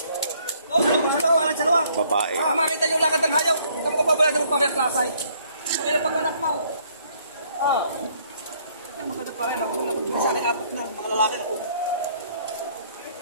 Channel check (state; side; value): inverted; both; correlation -0.64